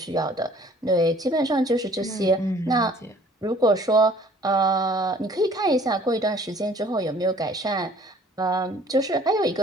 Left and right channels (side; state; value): both; normal; correlation 0.54